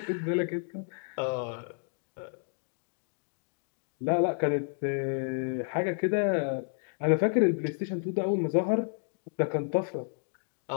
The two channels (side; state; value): right; silent; digital silence